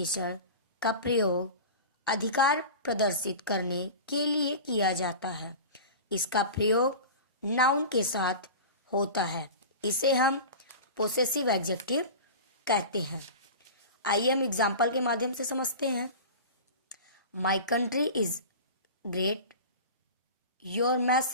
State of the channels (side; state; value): both; inverted; correlation -0.32